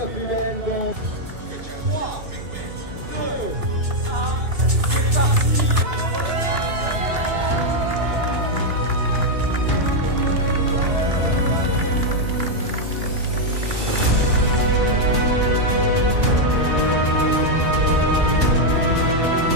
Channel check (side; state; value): left; late; 2.5 ms